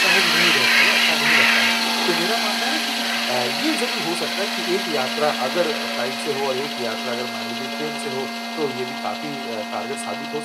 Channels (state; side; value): identical; both; correlation 1.00